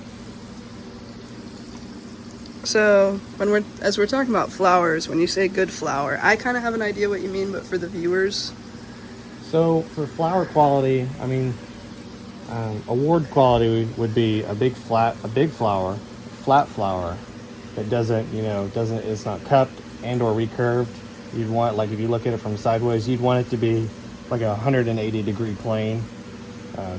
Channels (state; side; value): identical; both; correlation 1.00